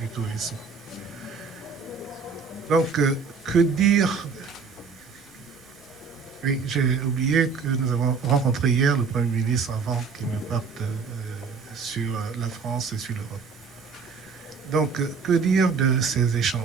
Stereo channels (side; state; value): left; quieter; 5.3 dB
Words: Tourisme. Donc, que dire? Oui, j'ai oublié que nous avons rencontré hier le Premier ministre avant qu'il ne parte sur la France et sur l'Europe. Donc, que dire de ces